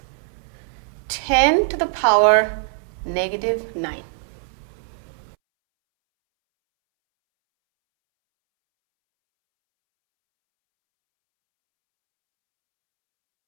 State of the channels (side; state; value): left; silent; 64 dB below the other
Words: 10 to the power -9.